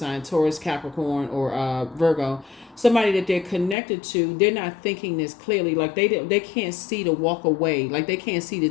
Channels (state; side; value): drops out; right; at 3.8 s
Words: Taurus, Capricorn, or Virgo. Somebody that they're connected to, they're not thinking this clearly. Like they can't see to walk away. Like they can't see to